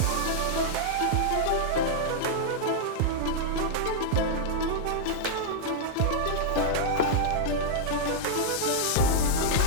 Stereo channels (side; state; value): both; different; correlation -0.01